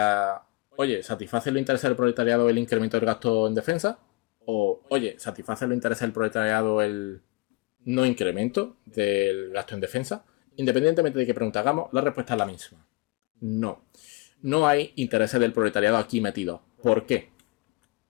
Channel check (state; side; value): quieter; right; 23.7 dB